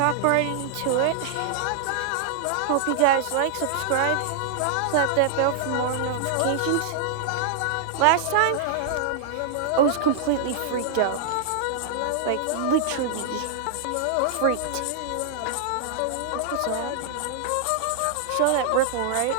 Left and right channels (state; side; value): different; both; correlation -0.01